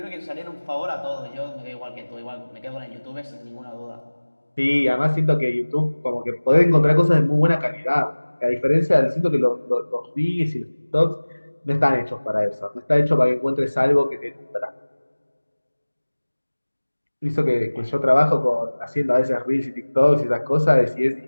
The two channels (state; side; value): inverted; both; correlation -1.00